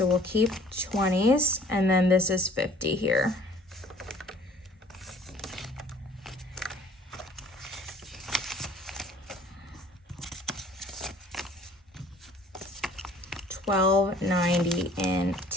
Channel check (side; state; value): both; normal; correlation 0.54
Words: we'll keep 20s, and then this is 50 here. $12.90 in